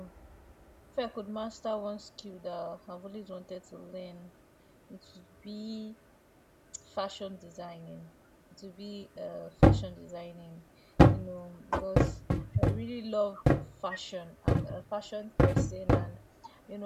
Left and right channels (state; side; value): identical; both; correlation 1.00